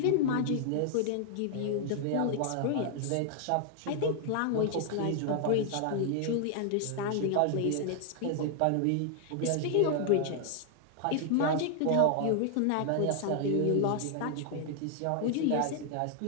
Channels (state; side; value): different; both; correlation 0.00